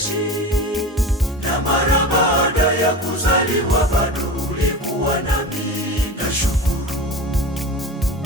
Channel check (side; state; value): both; normal; correlation 0.30